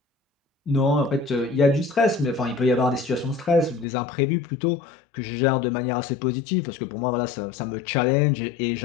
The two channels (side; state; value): right; drops out; at 3.9 s